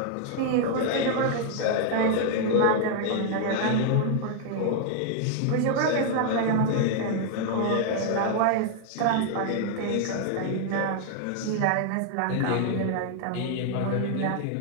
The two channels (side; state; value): both; different; correlation 0.00